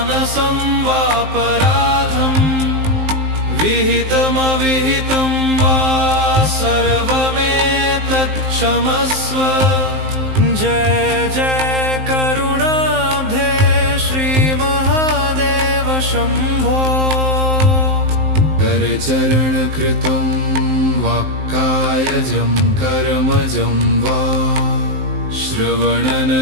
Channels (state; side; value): late; left; 19 ms